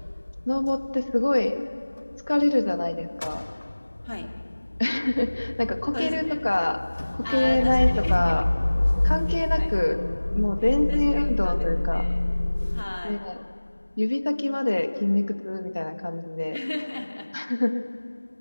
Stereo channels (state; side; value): inverted; both; correlation -1.00